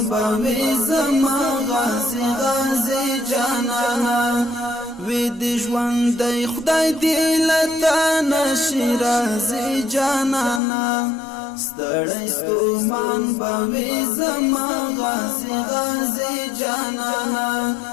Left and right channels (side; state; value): right; drops out; at 10.6 s